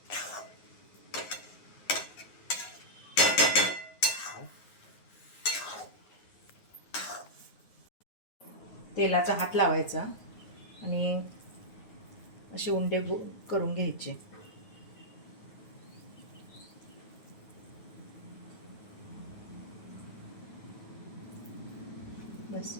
तेलाचा हात लावायचा आणि असे उंडे करून घ्यायचे. बस.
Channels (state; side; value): late; right; 9.5 ms